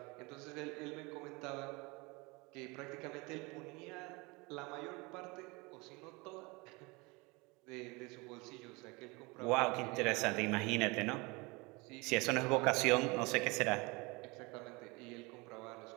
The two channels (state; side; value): quieter; left; 26.1 dB